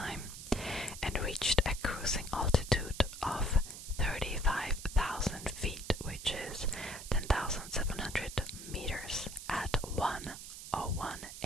and reached a cruising altitude of 35,000 feet, which is 10,700 meters at 1:01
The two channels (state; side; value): noise; right; hiss, 11 dB below the sound